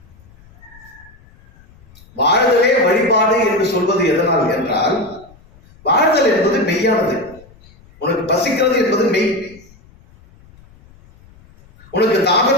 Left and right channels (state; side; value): noise; left; rumble, 26 dB below the sound